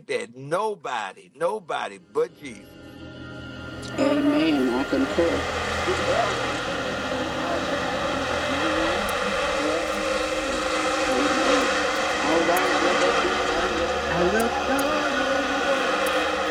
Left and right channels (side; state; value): both; identical; correlation 1.00